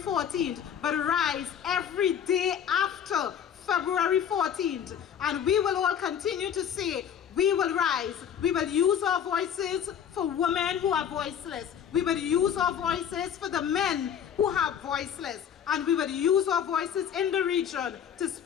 but rise every day after February 14th. And we will all continue to say, we will rise. We will use our voices for women who are voiceless. We will use our voices for the men who are voiceless. And we will use our voices in the region to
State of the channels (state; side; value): quieter; right; 8.7 dB